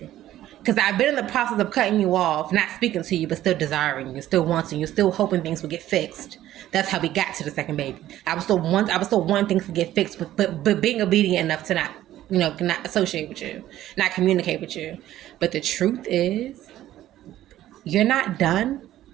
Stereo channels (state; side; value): quieter; left; 13.5 dB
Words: Because I've been in the process of cutting you off, not speaking to you, but still desiring you, still wanting you, still hoping things would get fixed. That's how we got to the second baby. I was still wanting things to get fixed, but being obedient enough to not associate with you, not communicate with you. But the truth is, you're not done